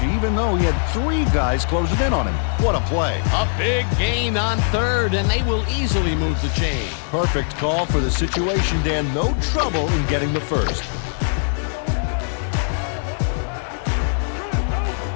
even though he had 3 guys closing in on him. What a play. A big gain on third, and they will easily move the chain. Perfect call for the situation, Dan. No trouble in getting the first.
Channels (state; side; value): silent; right; digital silence